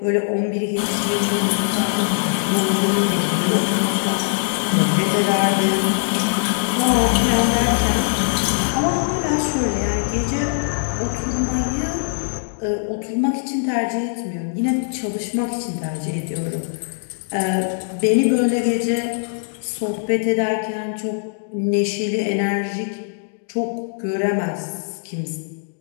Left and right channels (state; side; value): silent; right; digital silence